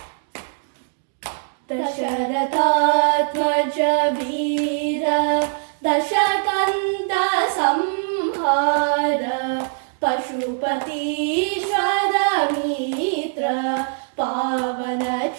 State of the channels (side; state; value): left; silent; digital silence